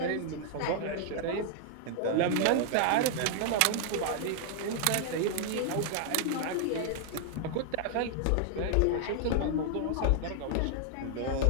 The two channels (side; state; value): both; different; correlation -0.01